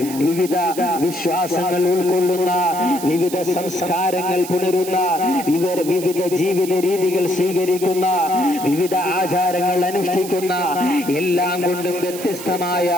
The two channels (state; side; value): noise; right; hiss, 12 dB below the sound